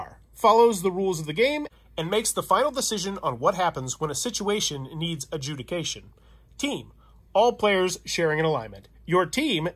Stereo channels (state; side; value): identical; both; correlation 1.00